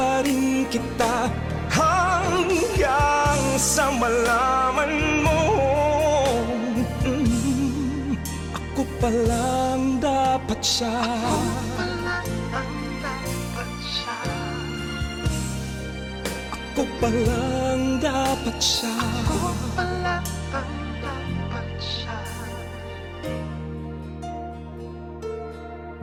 rin kita, hanggang sa malaman mo ako palang dapat siya. Ako palang dapat siya. Ako palang dapat siya.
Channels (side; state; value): both; identical; correlation 1.00